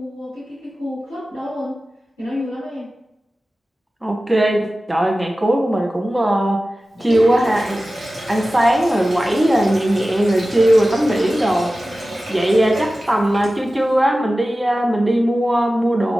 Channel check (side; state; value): both; normal; correlation 0.95